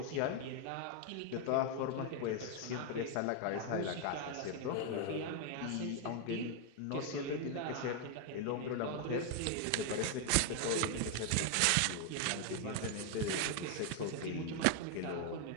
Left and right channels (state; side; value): different; both; correlation 0.00